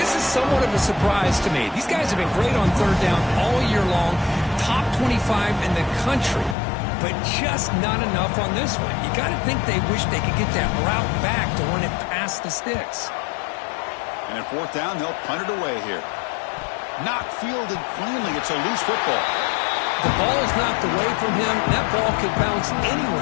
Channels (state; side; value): drops out; right; at 6.6 s